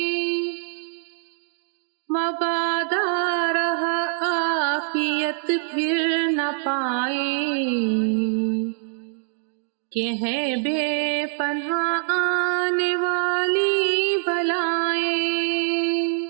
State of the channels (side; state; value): left; silent; 63 dB below the other